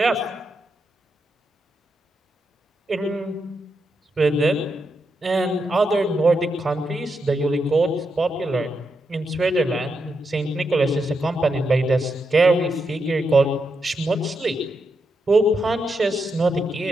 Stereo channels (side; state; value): both; normal; correlation 0.84